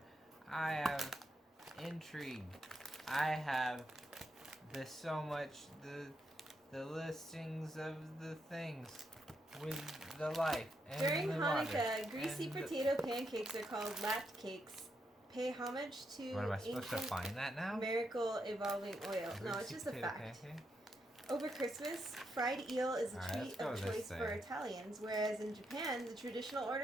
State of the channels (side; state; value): both; normal; correlation 0.81